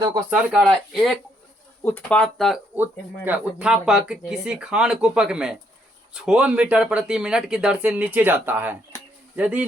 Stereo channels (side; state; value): both; normal; correlation 0.72